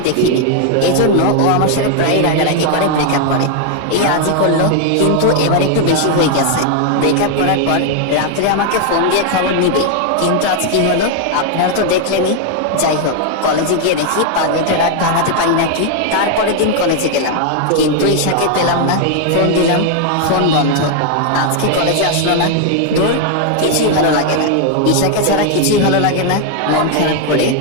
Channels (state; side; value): different; both; correlation 0.00